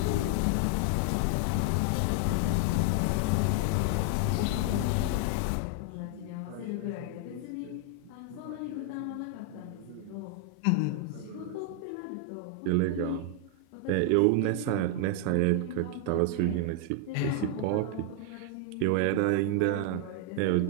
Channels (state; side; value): different; both; correlation 0.00